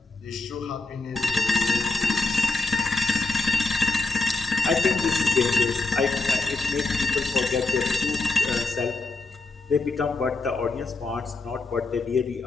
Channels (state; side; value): quieter; right; 3.5 dB